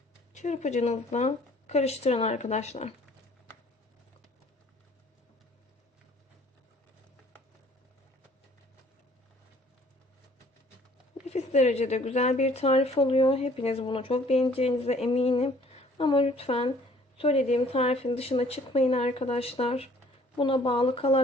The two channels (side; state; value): both; normal; correlation 0.56